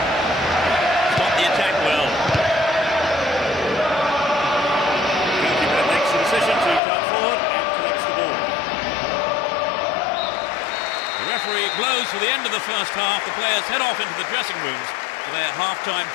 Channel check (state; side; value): drops out; right; at 6.8 s